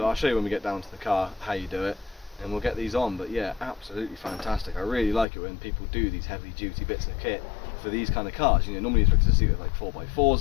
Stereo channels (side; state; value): right; drops out; at 5.2 s